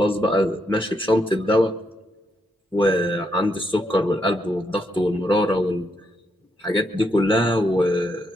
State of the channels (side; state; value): both; normal; correlation 0.79